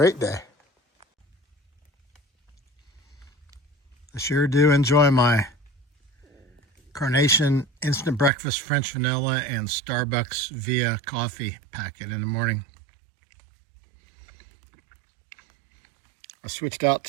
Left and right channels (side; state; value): left; drops out; at 8.3 s